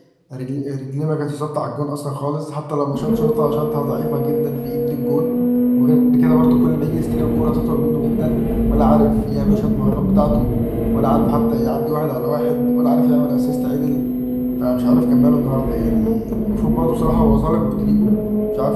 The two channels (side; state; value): both; identical; correlation 1.00